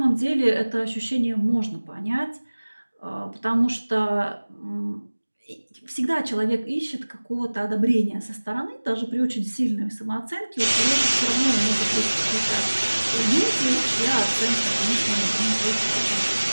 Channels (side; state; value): both; inverted; correlation -1.00